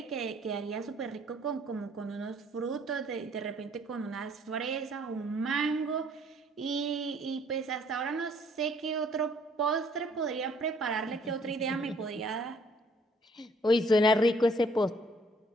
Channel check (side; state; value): both; normal; correlation 0.61